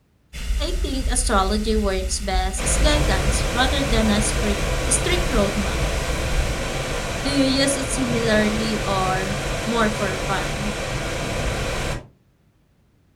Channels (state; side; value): identical; both; correlation 1.00